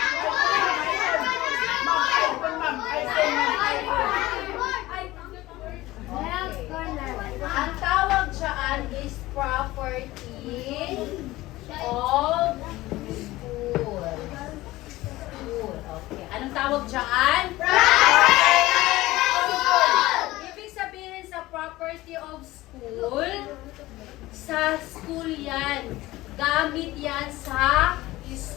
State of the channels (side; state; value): right; quieter; 17.9 dB